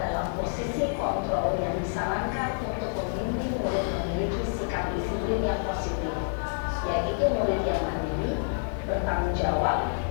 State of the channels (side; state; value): right; silent; digital silence